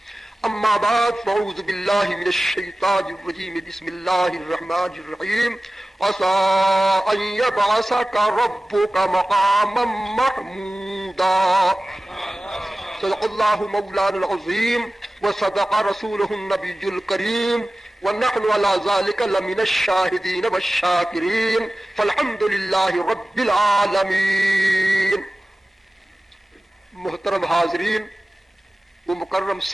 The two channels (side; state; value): both; normal; correlation 0.96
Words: أما بعد فأعوذ بالله من الشيطان الرجيم بسم الله الرحمن الرحيم عسى أن يبعثك ربك مقاما محمودا. صدق الله مولانا العظيم وصدق رسوله النبي الكريم ونحن على ذلك لمن الشاهدين والشاكرين فالحمد لله رب العالمين. محترم حاضرین و مکرم